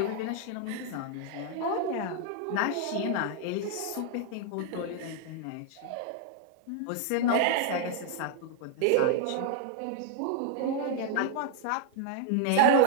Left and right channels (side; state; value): both; different; correlation 0.00